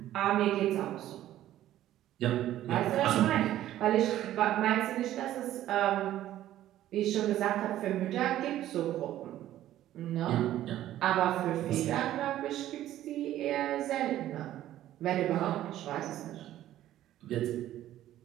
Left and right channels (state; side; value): quieter; left; 13.2 dB